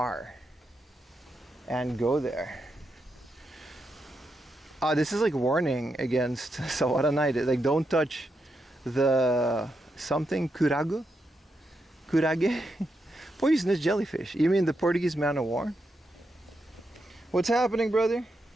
and go there. This is like warning against Sawara night. Like, don't touch the something kurage, poisonous jellyfish. You mean the Portuguese man of war? What's happening, brother?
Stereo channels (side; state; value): both; normal; correlation 0.84